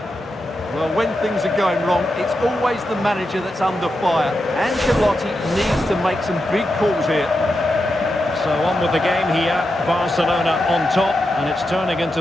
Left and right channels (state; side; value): normal; both; correlation 0.88